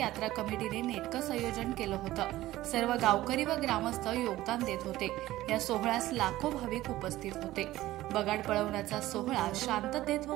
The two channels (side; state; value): left; quieter; 16.0 dB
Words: कमिटीने नेटकं संयोजन केलं होतं। सर्व गावकरी व ग्रामस्थ योगदान देत होते। या सोहळ्यास लाखो भाविक उपस्थित होते। बगाड पळवण्याचा सोहळा शांततेत व